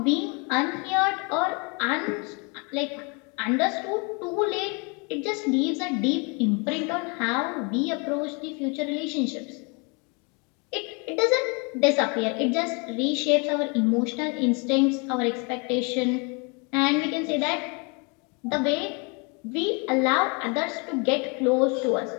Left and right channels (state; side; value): quieter; right; 32.3 dB